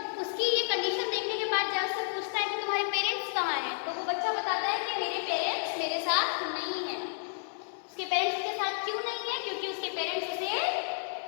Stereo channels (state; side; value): silent; right; digital silence